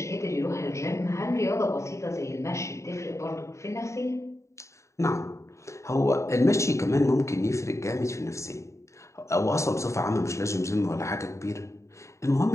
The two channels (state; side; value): late; right; 0.14 ms